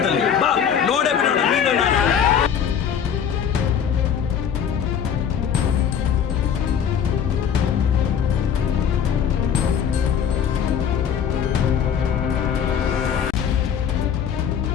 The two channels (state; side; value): quieter; right; 8.1 dB